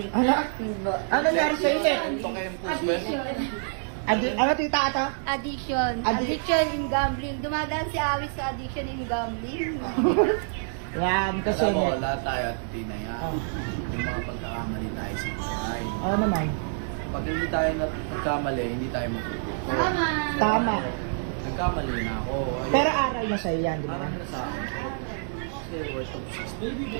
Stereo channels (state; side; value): silent; left; 60 dB below the other